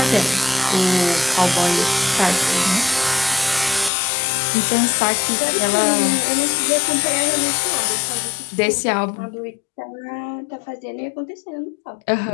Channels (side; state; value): right; drops out; at 3.9 s